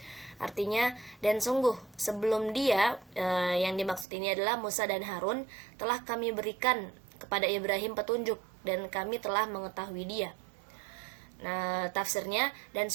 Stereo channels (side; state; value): left; drops out; at 4.0 s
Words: Artinya, dan sungguh sebelum dia, yang dimaksud ini adalah Musa dan Harun, telah kami berikan kepada Ibrahim petunjuk dan kami telah mengetahui dia. Nah, tafsirnya, dan